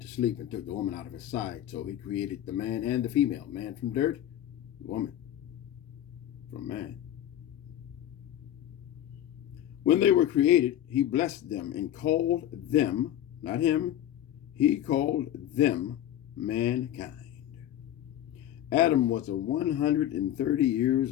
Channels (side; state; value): right; quieter; 11.8 dB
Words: sleep and took the woman out of his side. So he created the man and the female. Man from dirt, woman from man. When they were created, he blessed them and called them, not him, he called them mankind. Adam was 130